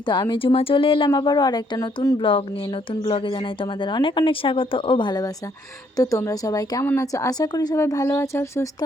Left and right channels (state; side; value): normal; both; correlation 0.69